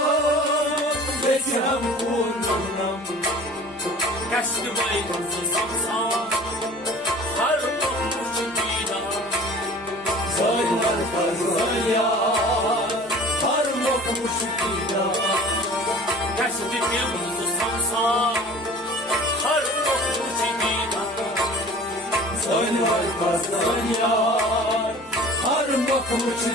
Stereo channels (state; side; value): normal; both; correlation 0.44